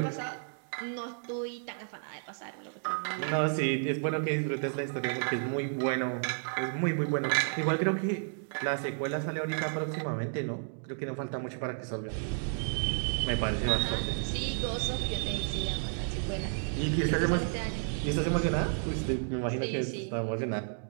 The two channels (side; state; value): left; silent; digital silence